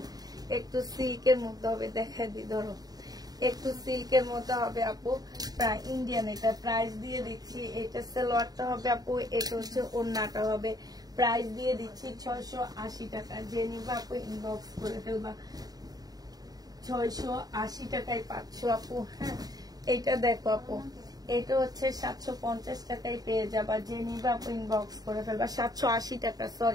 একটু সিল্কের মধ্যে হবে, দেখা দি ধরো, একটু সিল্কের মধ্যে হবে আপু, প্রায় ইন্ডিয়ান। এটা প্রাইস দিয়ে দিচ্ছি, এটা সালোয়ারটা হবে আপু, এটা হচ্ছে ওড়নাটা হবে। প্রাইস দিয়ে দিচ্ছি 680 টাকা। যে নিবা আপু ইনবক্স করে ফেলবা, 680 টাকায় পাচ্ছ আপু। হ্যাঁ, এটা দেখো আপু, এটা হচ্ছে 750 টাকায় পেয়ে যাবা। যে নিবা আপু ইনবক্স করে ফেলবা, 780 টাকা,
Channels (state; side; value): late; left; 0.18 ms